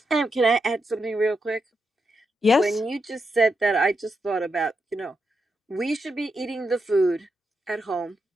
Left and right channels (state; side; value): normal; both; correlation 0.84